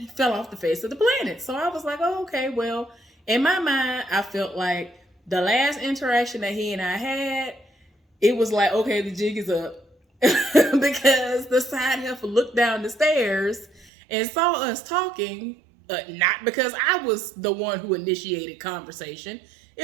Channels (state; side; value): drops out; left; at 13.9 s